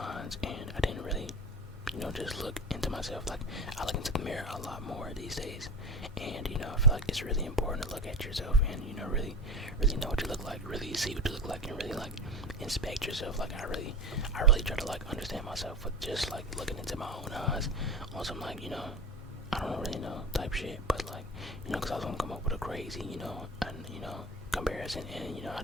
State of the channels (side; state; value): both; normal; correlation 0.30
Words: and I didn't really, just look into myself. Like, I look into the mirror a lot more these days, and, I feel like it's really important to look at yourself and, really know what you look like, really see what you look like, and really, like, inspect yourself. Like, I really try to, like, understand myself with just, like, looking into my own eyes on some, like, I don't really know type shit, but, like, because I was gonna come up with a crazy, comparison, and, I